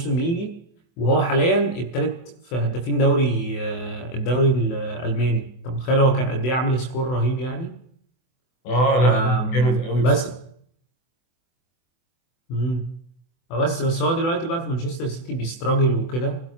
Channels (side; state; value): right; late; 24 ms